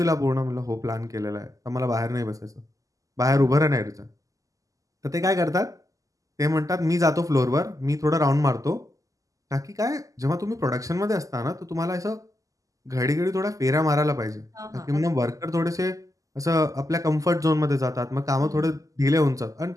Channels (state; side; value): late; left; 0.16 ms